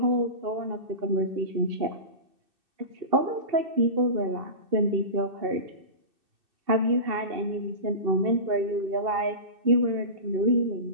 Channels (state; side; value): late; left; 2.6 ms